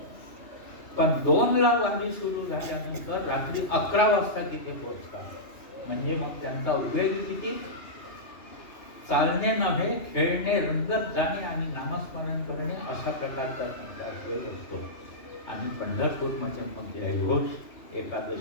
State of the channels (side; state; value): right; late; 2.8 ms